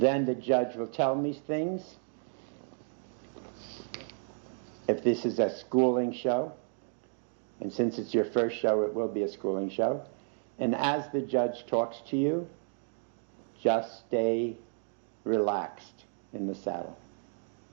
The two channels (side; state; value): left; silent; 56 dB below the other